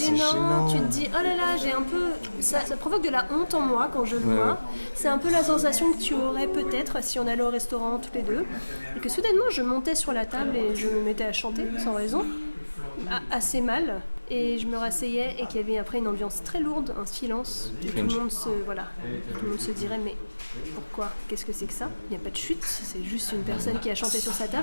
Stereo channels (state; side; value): inverted; both; correlation -1.00